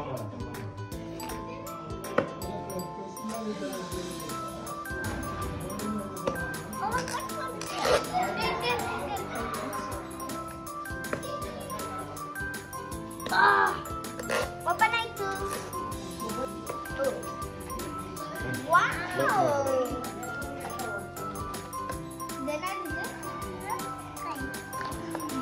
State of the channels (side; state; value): both; identical; correlation 1.00